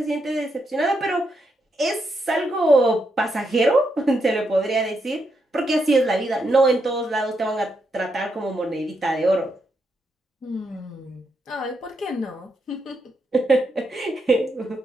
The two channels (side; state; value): both; normal; correlation 0.81